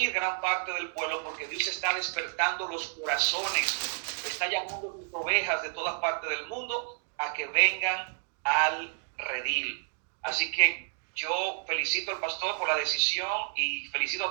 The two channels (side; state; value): left; silent; 58 dB below the other